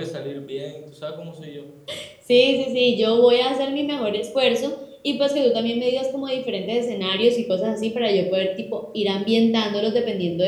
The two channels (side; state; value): both; identical; correlation 1.00